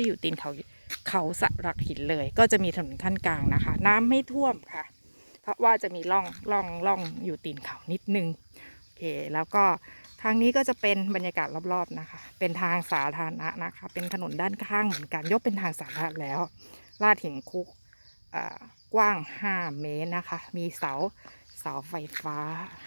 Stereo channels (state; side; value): inverted; both; correlation -1.00